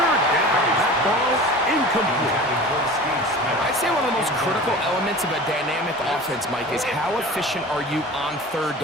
down, that ball incomplete. I'd say one of the most critical elements of a dynamic offense, Mike, is how efficient are you on 3rd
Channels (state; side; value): normal; both; correlation 0.38